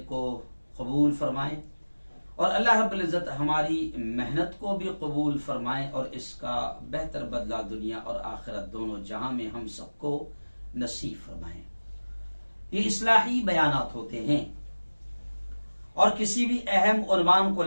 کو قبول فرمائیں اور اللہ رب العزت ہماری محنت کو بھی قبول فرمائیں اور اس کا بہتر بدلہ دنیا اور آخرت دونوں جہاں میں ہم سب کو نصیب فرمائیں۔ یہ اصلاحی بیانات ہوتے ہیں اور کسی بھی اہم عنوان کو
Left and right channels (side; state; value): both; inverted; correlation -1.00